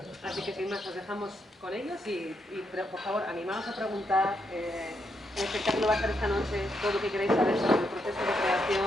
Así que sin más, os dejamos con ellos y por favor, animaos a preguntar. El espectáculo va a ser esta noche, todo lo que queréis saber sobre el proceso de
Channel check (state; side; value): normal; both; correlation 0.79